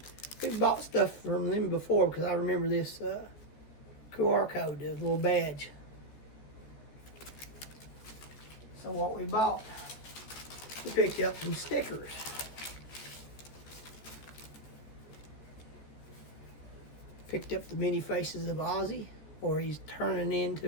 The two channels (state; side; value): late; right; 14 ms